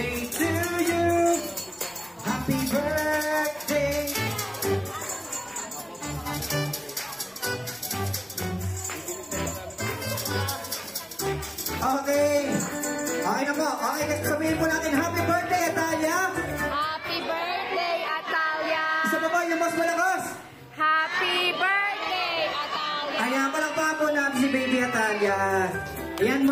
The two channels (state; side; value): identical; both; correlation 1.00